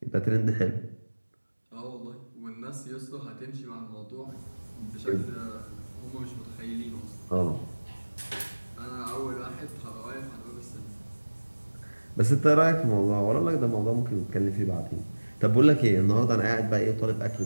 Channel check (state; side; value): inverted; both; correlation -1.00